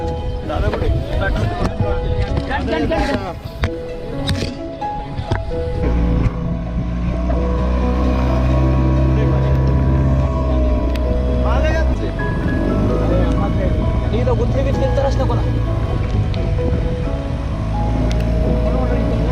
इथं गुंथे बिंथे तरच नको ना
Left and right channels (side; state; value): both; identical; correlation 1.00